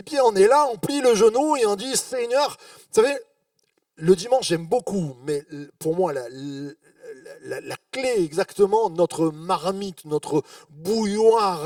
on est là, on plie le genou et on dit Seigneur, vous savez, le dimanche j'aime beaucoup, mais pour moi la clé exactement, notre marmite, notre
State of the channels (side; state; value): both; identical; correlation 1.00